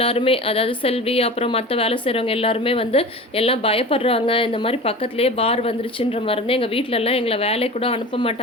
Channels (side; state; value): both; normal; correlation 0.35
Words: அதாவது செல்வி, அப்புறம் மத்த வேலை செய்றவங்க எல்லாருமே வந்து எல்லாம் பயப்படுறாங்க. இந்த மாரி பக்கத்திலேயே பார் வந்துருச்சுன்ற மருந்து எங்க வீட்லலாம் எங்கள வேலைக்கு கூட அனுப்ப அனுப்ப